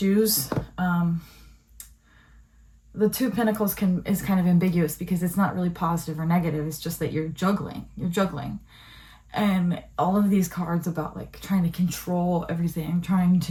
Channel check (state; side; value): identical; both; correlation 1.00